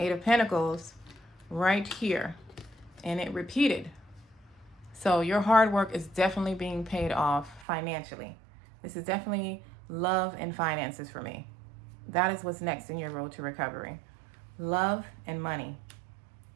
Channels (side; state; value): left; drops out; at 7.7 s